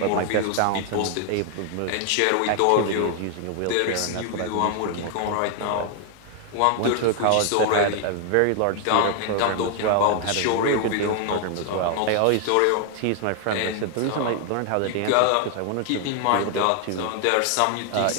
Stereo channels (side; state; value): both; different; correlation 0.00